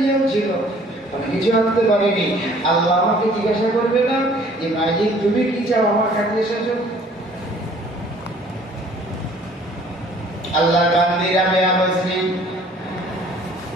ছিল, আমি কিছু আনতে পারিনি। আল্লাহ আমাকে জিজ্ঞাসা করবে না যে মাইজিদ তুমি কি চাও আমার কাছে এসেছো। আল্লাহ গান্ধী রাবেয়া বসরি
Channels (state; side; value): normal; both; correlation 0.55